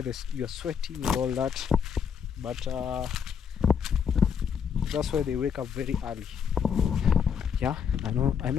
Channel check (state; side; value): quieter; right; 7.3 dB